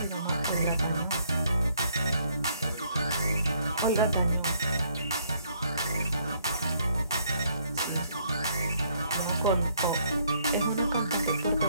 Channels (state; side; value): inverted; both; correlation -0.68